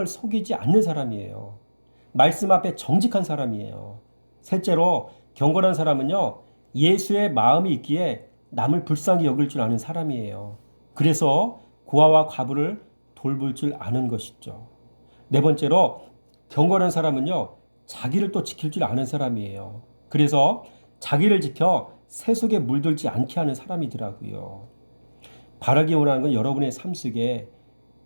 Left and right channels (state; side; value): inverted; both; correlation -1.00